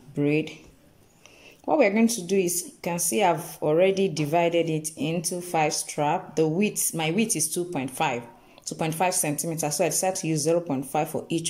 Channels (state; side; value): identical; both; correlation 1.00